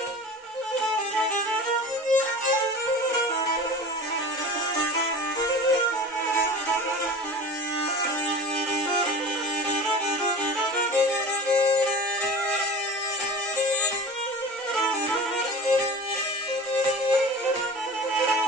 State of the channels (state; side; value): normal; both; correlation 0.36